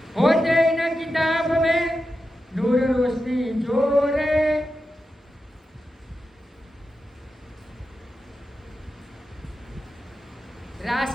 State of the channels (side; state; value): both; normal; correlation 0.90